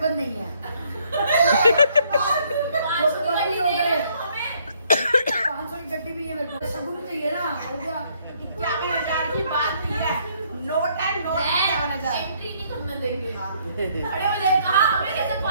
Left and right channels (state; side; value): inverted; both; correlation -0.67